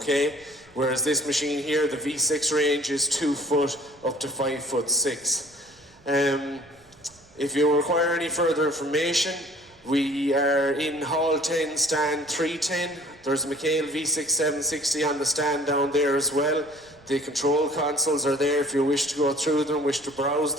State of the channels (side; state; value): right; noise; rumble, 28 dB below the sound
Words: Whereas this machine here, the V6 range, is 2 foot up to 5'6". If you require any further information, we are in Hall 10, stand 310. There's a McHale V6 760 on the stand down there as well. The control consoles are there if you wish to go through them, wish to browse